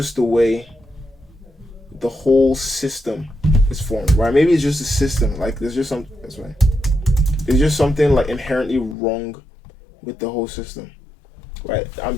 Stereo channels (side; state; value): right; drops out; at 9.0 s